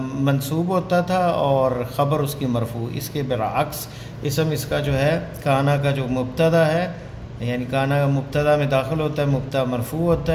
منصوب ہوتا تھا اور خبر اس کی مرفوع، اس کے برعکس اسم اس کا جو ہے کانا کا جو مبتدا ہے، یعنی کانا مبتدا میں داخل ہوتا ہے، مبتدا مرفوع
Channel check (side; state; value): both; identical; correlation 1.00